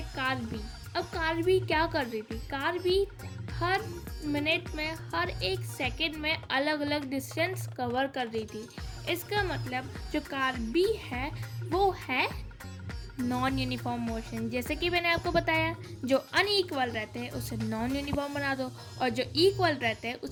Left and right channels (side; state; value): both; identical; correlation 1.00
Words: कार भी। अब कार भी क्या कर रही थी? कार भी हर मिनट में, हर एक सेकंड में अलग अलग डिस्टेंस कवर कर रही थी। इसका मतलब जो कार भी है वो है नॉन यूनिफॉर्म मोशन। जैसे कि मैंने आपको बताया, जो अनइक्वल रहते हैं उसे नॉन यूनिफॉर्म बना दो और जो इक्वल रहते हैं